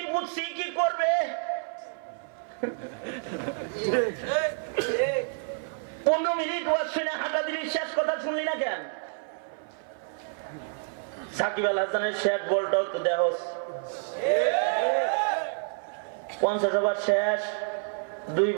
বুঝছি, কি করবে? 15 মিনিট ওয়াজ শুনে হাঁটা দিলি, শেষ কথা শুনলি না কেন? সাকিব আল হাসানের শেষ বলটাও তো দেহ 50 ওভার শেষ, 2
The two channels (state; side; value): silent; left; 56 dB below the other